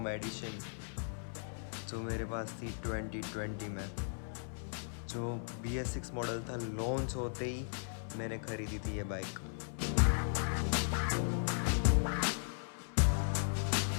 edition जो मेरे पास थी 2020 में। जो BS6 मॉडल था, लॉन्च होते ही मैंने खरीदी थी ये बाइक।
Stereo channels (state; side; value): silent; right; 53 dB below the other